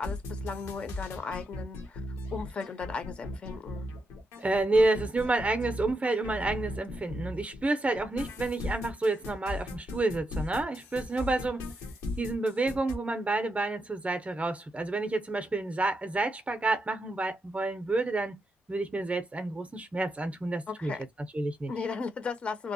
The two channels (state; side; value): normal; both; correlation 0.84